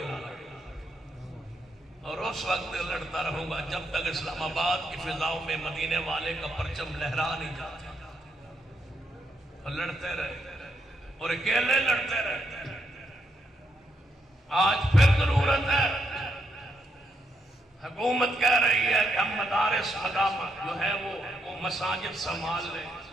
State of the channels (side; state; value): both; normal; correlation 0.79